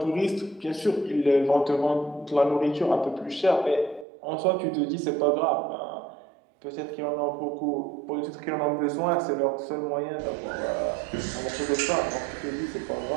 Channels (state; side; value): drops out; left; at 4.0 s